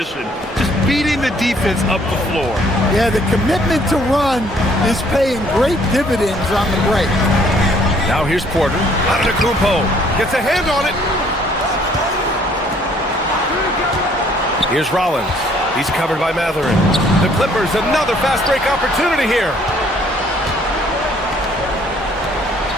Just beating the defense up the floor. Yeah, the commitment to run is paying great dividends on the break. Now here's Porter. Antetokounmpo gets a hand on it. Here's Rollins. He's covered by Matherin. The Clippers, another fast break opportunity here.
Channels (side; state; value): both; normal; correlation 0.62